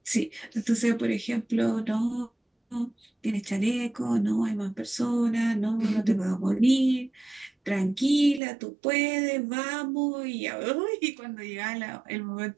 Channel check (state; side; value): drops out; left; at 8.4 s